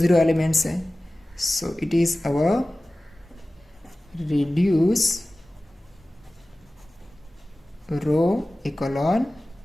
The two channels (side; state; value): both; normal; correlation 0.97